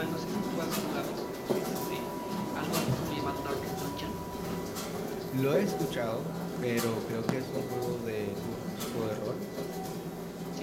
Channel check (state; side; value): identical; both; correlation 1.00